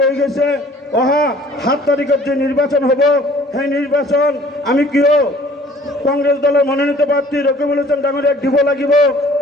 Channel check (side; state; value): both; normal; correlation 0.53